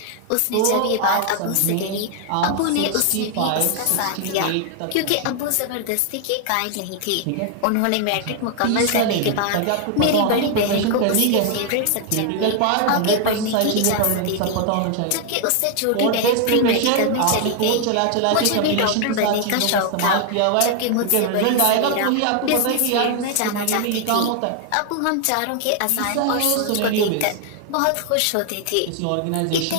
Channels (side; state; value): both; different; correlation 0.00